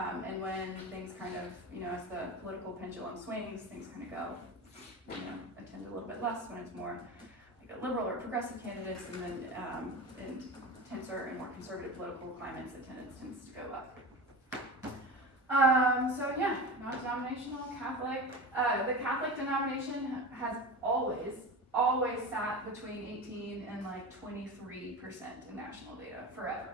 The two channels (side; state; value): both; normal; correlation 0.27